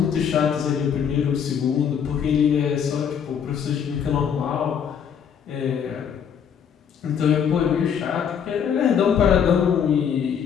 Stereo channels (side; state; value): right; quieter; 7.8 dB